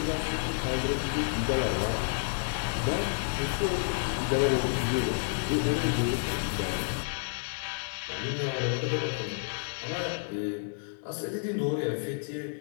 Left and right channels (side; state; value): right; silent; digital silence